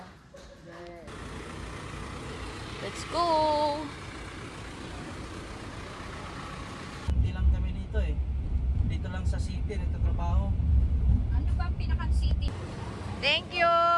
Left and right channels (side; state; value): both; identical; correlation 1.00